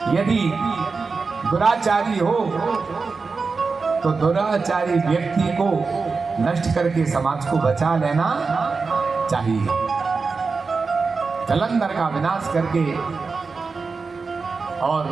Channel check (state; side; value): quieter; left; 4.5 dB